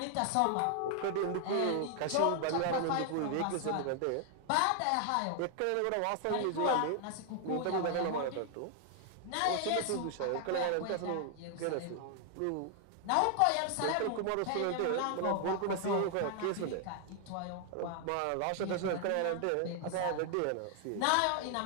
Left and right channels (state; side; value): different; both; correlation 0.00